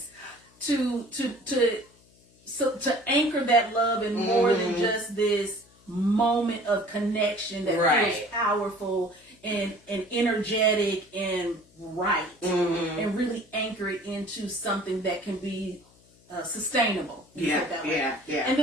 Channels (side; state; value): left; noise; hum, 29 dB below the sound